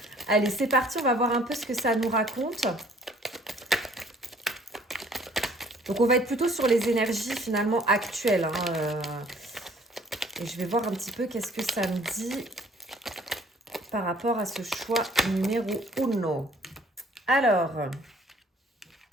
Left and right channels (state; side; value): normal; both; correlation 0.57